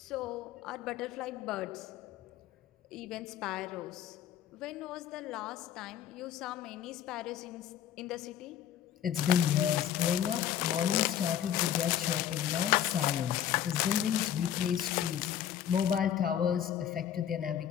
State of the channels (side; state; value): right; quieter; 10.1 dB